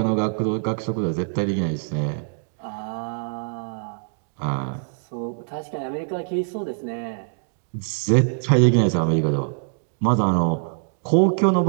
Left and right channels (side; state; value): left; silent; digital silence